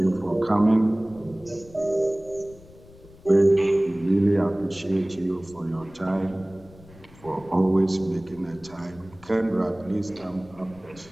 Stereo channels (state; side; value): noise; left; rumble, 22 dB below the sound